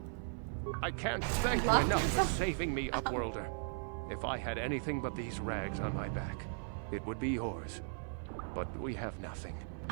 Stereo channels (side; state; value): left; silent; 53 dB below the other